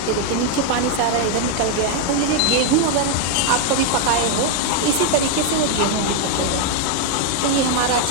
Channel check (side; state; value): both; different; correlation 0.01